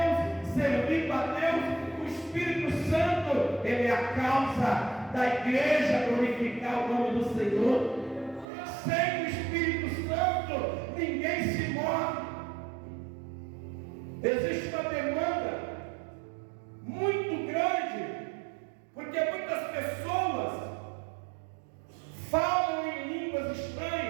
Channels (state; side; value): drops out; left; at 8.5 s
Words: servindo a Deus. O Espírito Santo, ele é a causa da igreja glorificar o nome do Senhor. Sem o Espírito Santo, ninguém se move. Existe uma demanda muito grande, porque muitas pessoas falam em línguas